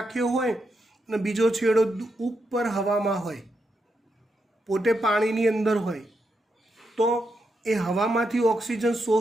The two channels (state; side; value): normal; both; correlation 0.83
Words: હોય અને બીજો છેડો ઉપર હવામાં હોય, પોતે પાણીની અંદર હોય, તો એ હવામાંથી ઓક્સિજન